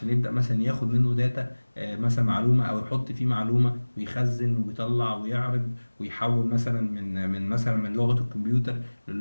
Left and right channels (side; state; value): both; inverted; correlation -1.00